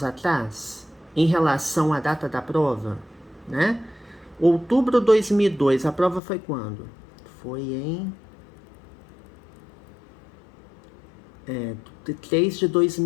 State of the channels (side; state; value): right; drops out; at 6.2 s